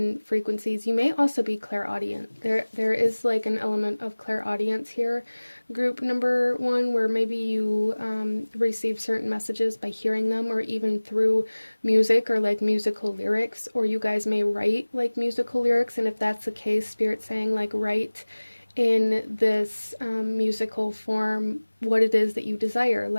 frequencies. You may also be clairaudient. There is like an element of clairaudience here, group number one, where maybe you receive certain messages by hearing them, or even through music or like musical lyrics, or you guys may write like musical lyrics. And if that's the case, Spirit's saying like write in this musical form what it is that you desire,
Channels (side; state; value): both; inverted; correlation -1.00